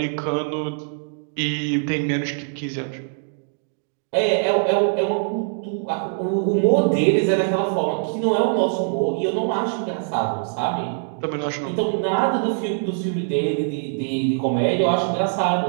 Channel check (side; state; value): left; silent; digital silence